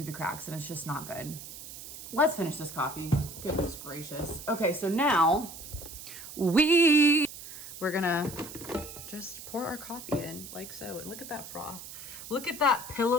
the cracks and it's just not good. Let's finish this coffee. Goodness gracious. Okay, so now we're gonna just pour our coffee in like so. And look at that froth. Look at that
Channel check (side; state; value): right; noise; hiss, 12 dB below the sound